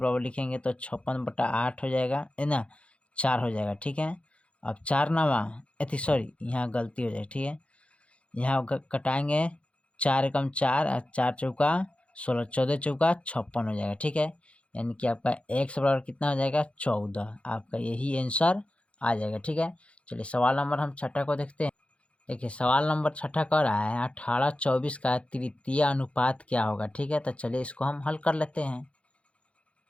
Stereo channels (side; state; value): right; late; 0.061 ms